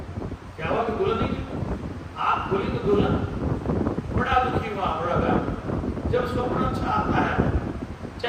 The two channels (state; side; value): identical; both; correlation 1.00